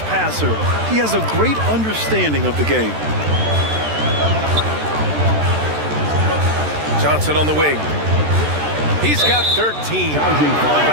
passer. He has a great understanding of the game. Johnson on the wing. He's got 13.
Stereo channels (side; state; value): left; late; 13 ms